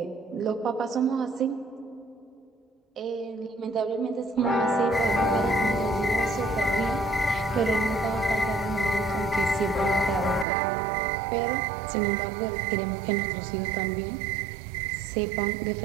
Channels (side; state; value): left; drops out; at 10.5 s